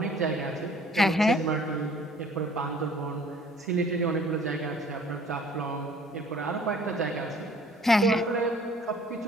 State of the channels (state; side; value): normal; both; correlation 0.54